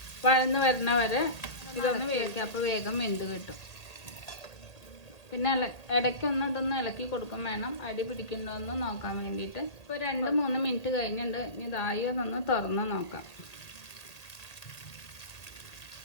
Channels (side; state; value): right; late; 1.9 ms